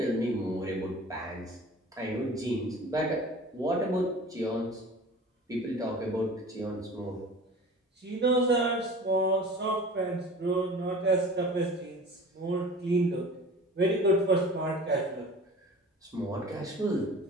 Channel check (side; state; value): both; normal; correlation 0.41